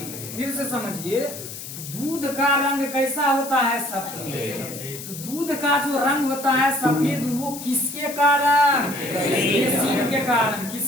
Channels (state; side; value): noise; left; hiss, 11 dB below the sound